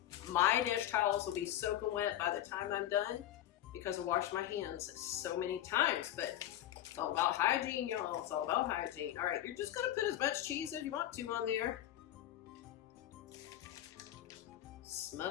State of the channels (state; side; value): quieter; right; 12.5 dB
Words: my dish towels will be soaking wet by the time I'm done because I washed my hands so many times. But it's all about hygiene, y'all. It's all about hygiene. All right, you're just gonna put as much cheese as you want to on there.